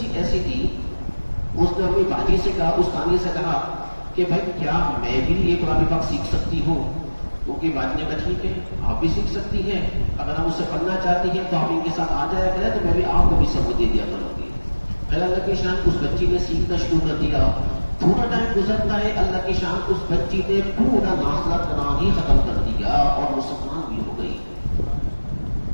ایسی تھی، اس نے اپنی باجی سے کہا، اس تانیہ سے کہا کہ بھائی کیا میں بھی یہ قرآن پاک سیکھ سکتی ہوں؟ کیونکہ باجی نے کہا ٹھیک ہے آپ بھی سیکھ سکتی ہیں، اگر ہم اس سے پڑھنا چاہتی ہیں تو آپ ان کے ساتھ آ جایا کریں تو میں بھی آپ کو بھی سبق دے دیا کروں گی. اللہ کی شان، اس بچی نے سیکھنا شروع کر دیا. تھوڑا ٹائم گزرتا ہے، اللہ کی شان اس بچی نے پورا ناسا کرنا ہی ختم کر دیا اور مسلمان بھی ہو گئی.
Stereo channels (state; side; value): inverted; both; correlation -1.00